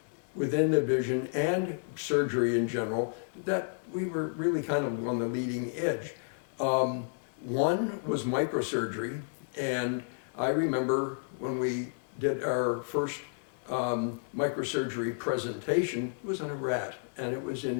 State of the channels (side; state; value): right; silent; digital silence